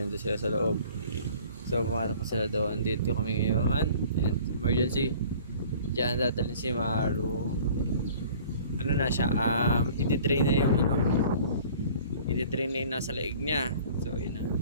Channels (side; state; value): both; inverted; correlation -0.49